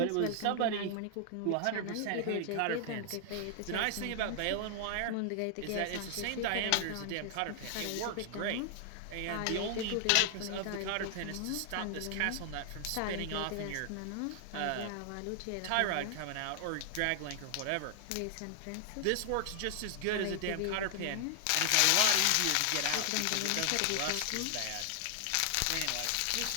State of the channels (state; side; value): different; both; correlation 0.00